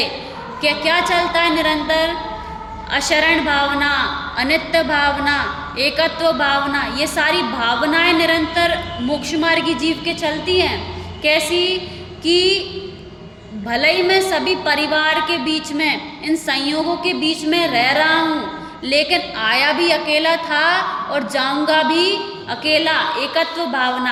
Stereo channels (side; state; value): both; identical; correlation 1.00